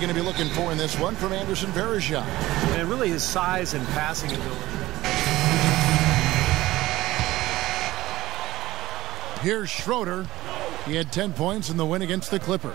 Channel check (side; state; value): left; quieter; 17.0 dB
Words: to be looking for in this one from Anderson Varejao? And really his size and passing ability. Here's Schroeder. He had 10 points in the win against the Clippers.